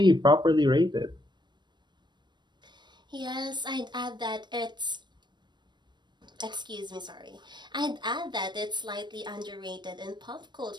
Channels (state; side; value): late; left; 0.22 ms